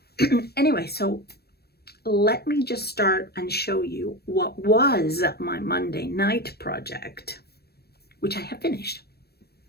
Anyway, so let me just start and show you what was my Monday night project, which I have finished.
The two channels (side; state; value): right; late; 0.47 ms